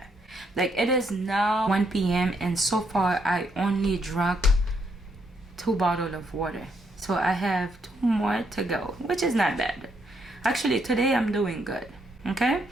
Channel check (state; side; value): normal; both; correlation 0.75